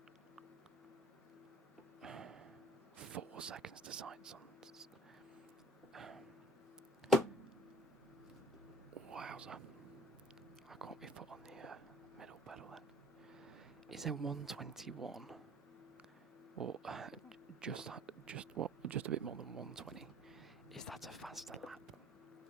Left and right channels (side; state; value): both; normal; correlation 0.51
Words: 4 seconds to sights on? Wowza. I can't be put on the middle pedal then. Is there 121 or just a bit more than 120? Is that a faster lap